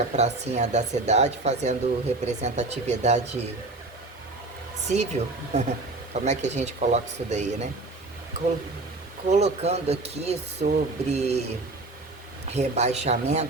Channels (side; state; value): left; quieter; 3.1 dB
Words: à pracinha da cidade, fazendo representatividade civil. Como é que a gente coloca isso daí, né? Colocando aqui sobre